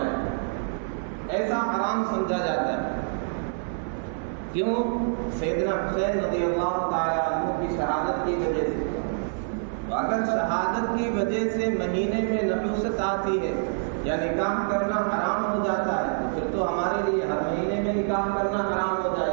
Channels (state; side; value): silent; left; 57 dB below the other